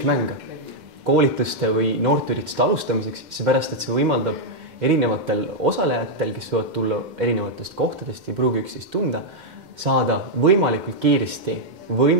koolituste või noorteürituste alustamiseks, seepärast, et see võimaldab erinevatel osalejatel, kes võivad tulla erinevatest kohtadest ja pruugi üksteist tunda, saada võimalikult kiiresti,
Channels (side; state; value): left; late; 2.1 ms